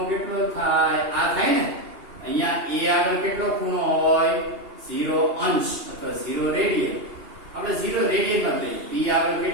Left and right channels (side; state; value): left; late; 2.8 ms